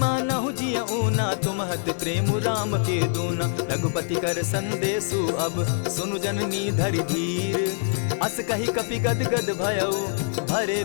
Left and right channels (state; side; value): silent; right; digital silence